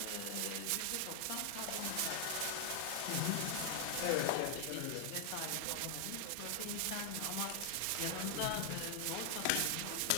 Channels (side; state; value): both; different; correlation 0.00